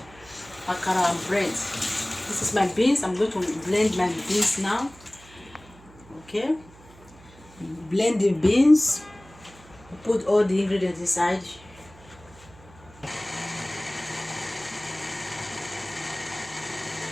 Akara and bread. This is my beans. I'm going to blend my beans now. Okay? Blend the beans. Put all the ingredients inside.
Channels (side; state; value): right; noise; hum, 23 dB below the sound